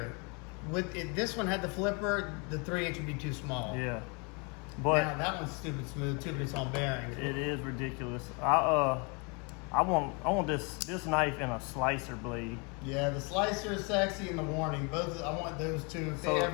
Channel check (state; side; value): quieter; right; 32.5 dB